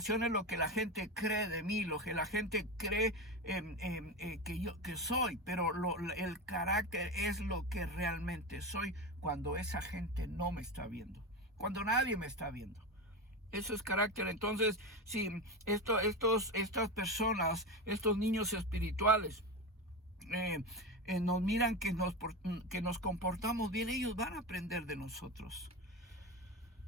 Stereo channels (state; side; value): normal; both; correlation 0.20